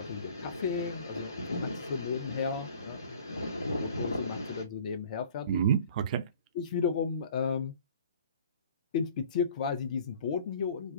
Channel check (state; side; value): inverted; both; correlation -0.49